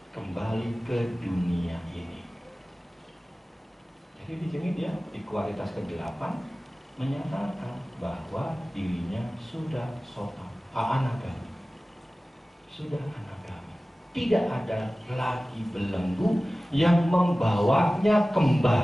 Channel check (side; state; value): both; normal; correlation 0.97